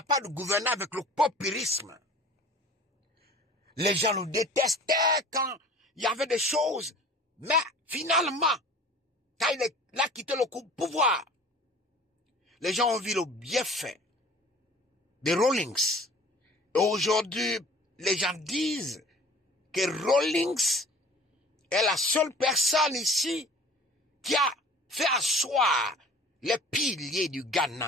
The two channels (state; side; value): normal; both; correlation 0.45